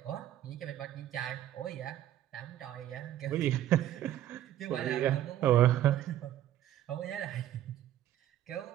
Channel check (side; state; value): left; quieter; 12.4 dB